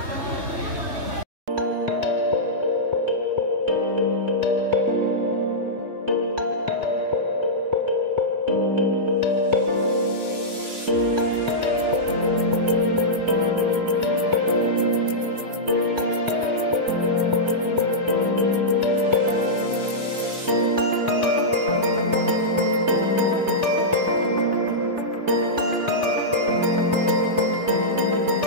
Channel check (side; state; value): left; late; 3.3 ms